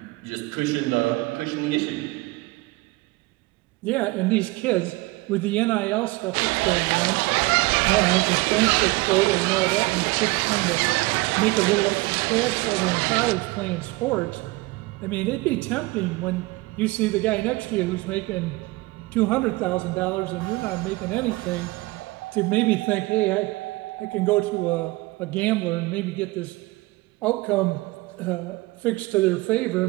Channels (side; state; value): left; quieter; 22.0 dB